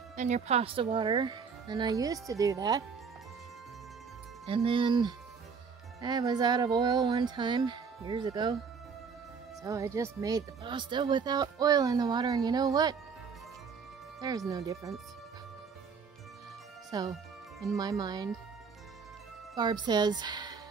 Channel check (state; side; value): quieter; left; 5.7 dB